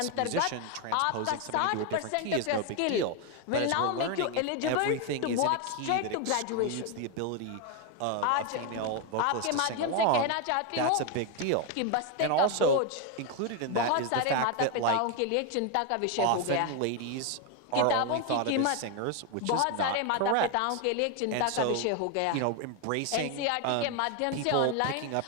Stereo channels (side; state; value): both; different; correlation 0.01